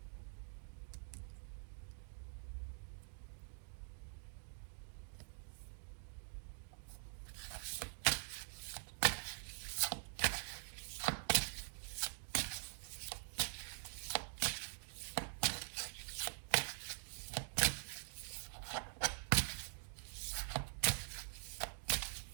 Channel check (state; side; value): silent; left; digital silence